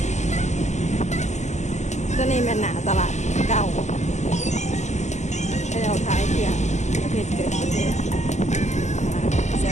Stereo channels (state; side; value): late; right; 0.33 ms